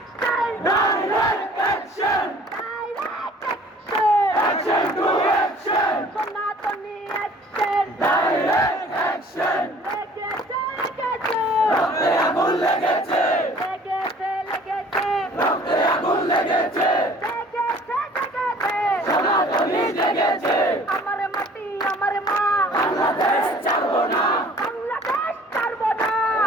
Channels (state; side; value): normal; both; correlation 0.51